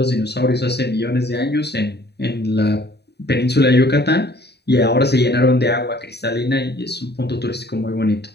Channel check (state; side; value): late; right; 0.48 ms